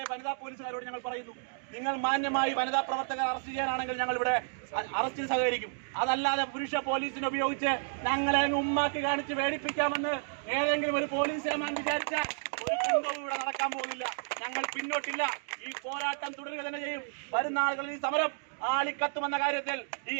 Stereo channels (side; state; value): left; silent; digital silence